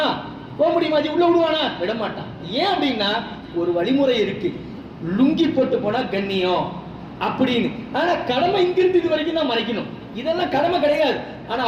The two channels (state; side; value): identical; both; correlation 1.00